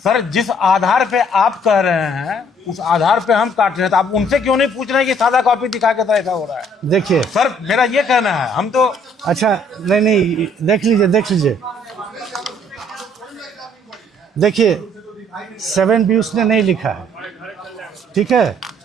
जिस आधार पे आप कह रहे हैं उस आधार पे हम काट रहे हैं, तो आप उनसे क्यों नहीं पूछ रहे हैं कि सादा कॉपी दिखा के तो ऐसा हो रहा है? देखिए सर, मेरा ये कहना है, हम तो अच्छा नहीं, देख लीजिए देखिए 7B उसने नहीं लिखा है, ठीक है,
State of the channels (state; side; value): normal; both; correlation 0.62